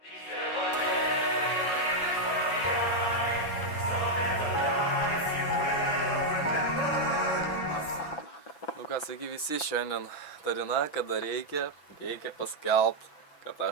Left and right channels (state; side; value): late; right; 6.4 ms